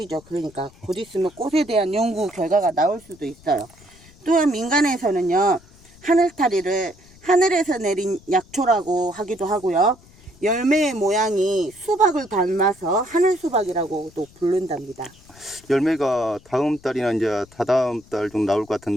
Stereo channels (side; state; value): left; noise; rumble, 25 dB below the sound